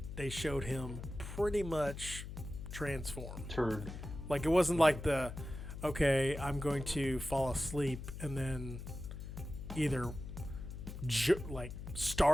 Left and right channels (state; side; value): noise; left; hum, 9 dB below the sound